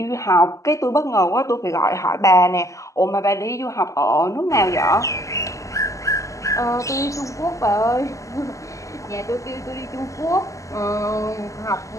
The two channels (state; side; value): late; right; 0.16 ms